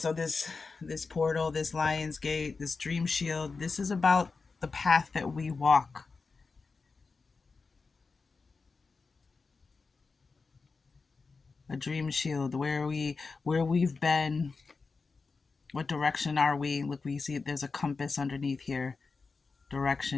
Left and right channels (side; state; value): right; quieter; 4.4 dB